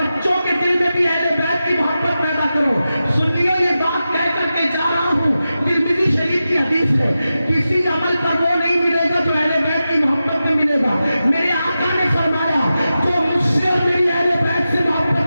کے دل میں بھی اہل بیت کی محبت پیدا کرو۔ سنیو یہ بات کہہ کر کے جا رہا ہوں، ترمذی شریف کی حدیث ہے، کسی عمل پر وہ نہیں ملے گا جو اہل بیت کی محبت میں ملے گا۔ میرے آقا نے فرمایا جو مجھ سے اور میری اہل بیت سے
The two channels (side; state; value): both; inverted; correlation -0.92